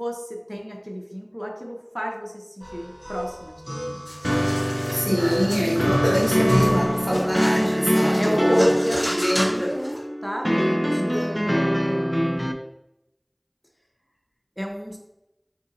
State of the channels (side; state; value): both; identical; correlation 1.00